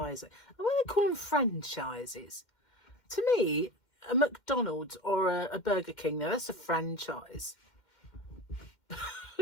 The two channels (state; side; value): late; right; 2.1 ms